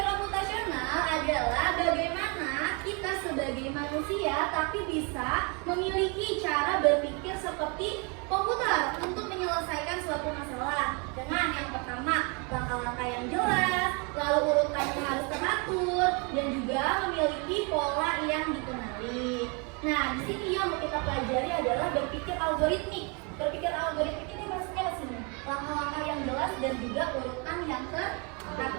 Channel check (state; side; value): quieter; left; 33.0 dB